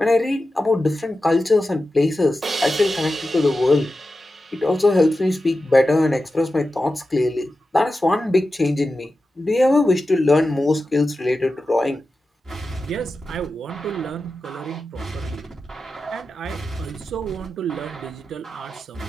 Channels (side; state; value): both; normal; correlation 0.92